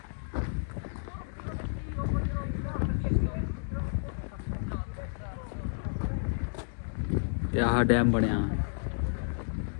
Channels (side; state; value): right; silent; digital silence